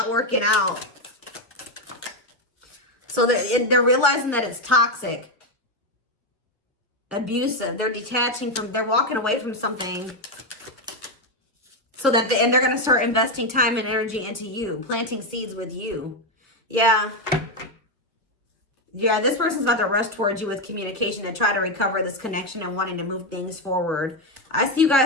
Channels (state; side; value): normal; both; correlation 0.07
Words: working out. So they're realizing that it's toxic, abusive. They're detaching from, they're walking away from something. So that, and they're going to start investing time and energy into you, planting seeds with you. Yeah. Yeah, this person's about to rush towards you with communication and try to recover this connection and wanting to move things forward. I see you